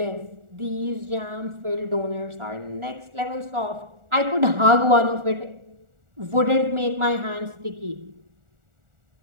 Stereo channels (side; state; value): left; late; 1.4 ms